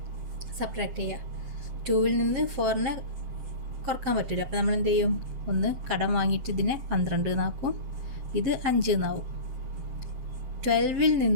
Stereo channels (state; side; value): late; left; 7.7 ms